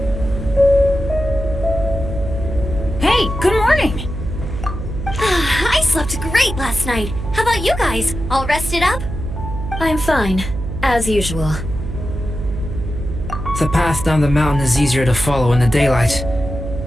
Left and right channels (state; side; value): noise; right; hum, 7 dB below the sound